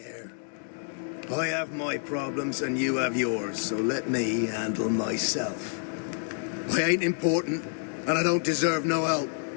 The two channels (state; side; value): silent; right; 59 dB below the other